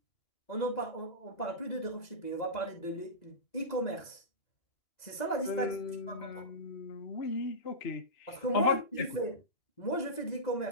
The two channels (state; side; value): late; right; 2.0 ms